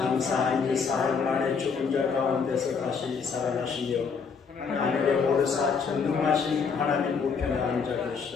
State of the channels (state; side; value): quieter; right; 5.7 dB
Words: 지 사흘 만에 죽은 자 가운데서 다시 살아나시며 하늘에 오르사 전능하신 하나님 우편에 앉아